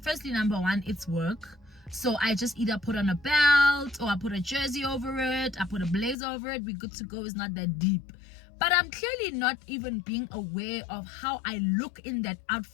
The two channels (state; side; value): drops out; right; at 6.2 s